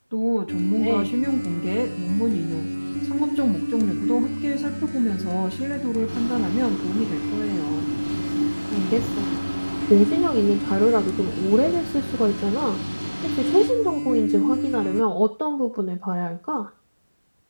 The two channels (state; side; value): inverted; both; correlation -1.00